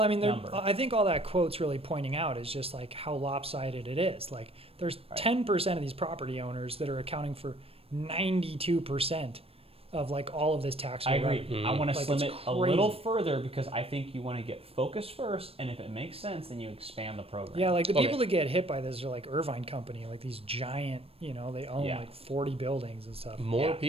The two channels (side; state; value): left; late; 0.28 ms